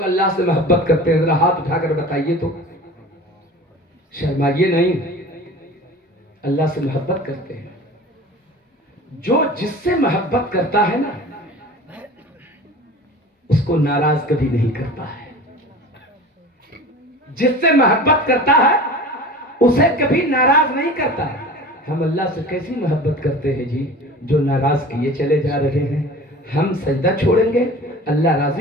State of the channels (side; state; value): both; normal; correlation 0.38